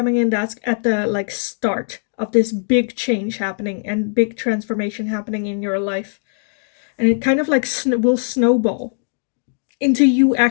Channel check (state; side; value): silent; right; digital silence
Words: in that's at the like start of this big change happening and big transformation happening in your life. And it kind of like will snowball into you